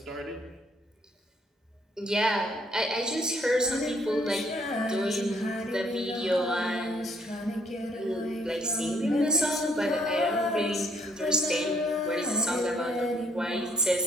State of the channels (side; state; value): both; normal; correlation 0.67